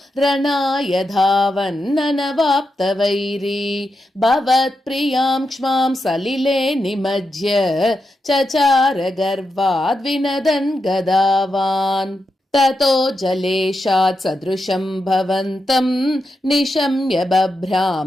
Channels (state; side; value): normal; both; correlation 0.87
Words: रणाय धावन्ननवाप्तवैरी भवत्प्रियां क्ष्मां सलिले निमज्य चचार गर्वाद्विनदन् गदावान्। ततो जलेशात् सदृशं भवन्तं निशम्य